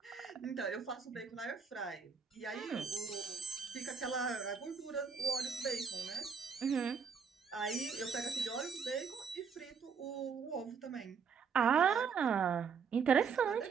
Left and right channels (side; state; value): left; quieter; 6.0 dB